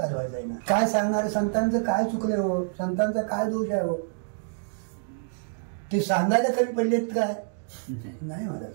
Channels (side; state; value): left; silent; digital silence